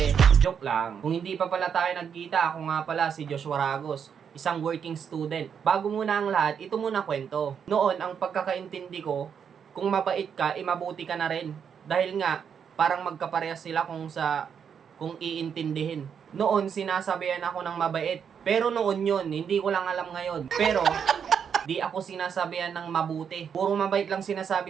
joke lang. Kung hindi pa pala tayo nagkita, ako nga pala si Joshua Ragos, isang working student. Bago muna ang lahat, ito muna kwento. Noon, ang pagkakaintindi ko, kung mabait ka, mabuti ka na rin. Dahil nga, parang magkaparehas sila kung iintindihin. Noon, sinasabihan ako ng mabait. Pero noon yun, hindi ko lang alam ngayon. Pero, di ako sinasabihan ng mabuti. Puro mabait lang sinasabi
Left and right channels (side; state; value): left; quieter; 7.4 dB